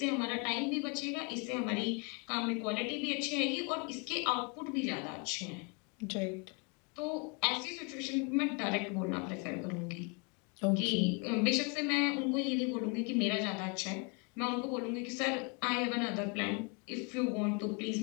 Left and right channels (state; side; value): quieter; right; 33.6 dB